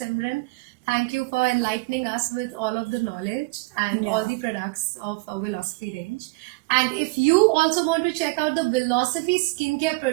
Thank you for enlightening us with all of the knowledge and all the products of Philosophy range. And if you also want to check out the Philosophy skincare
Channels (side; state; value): left; quieter; 25.7 dB